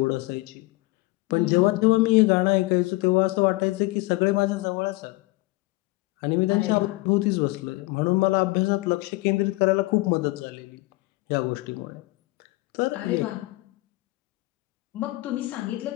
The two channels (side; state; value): right; quieter; 21.7 dB